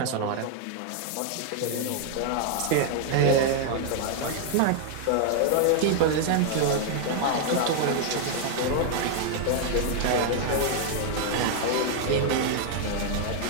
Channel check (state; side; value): different; both; correlation 0.00